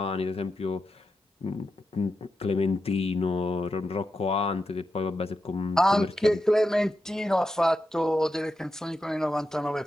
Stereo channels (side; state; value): both; normal; correlation 0.88